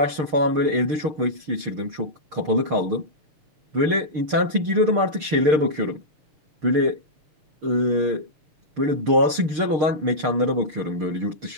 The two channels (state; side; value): late; left; 6.6 ms